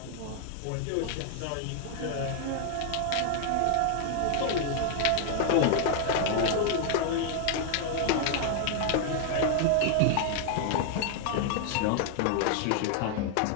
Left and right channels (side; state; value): both; different; correlation 0.00